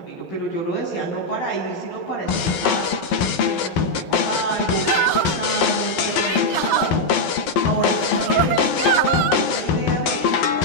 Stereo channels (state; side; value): late; right; 11 ms